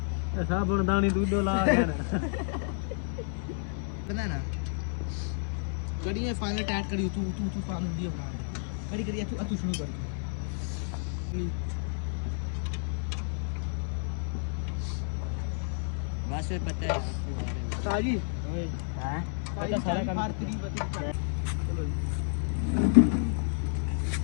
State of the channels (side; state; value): right; silent; digital silence